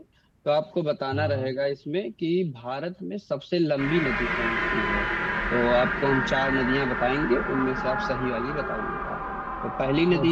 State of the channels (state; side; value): identical; both; correlation 1.00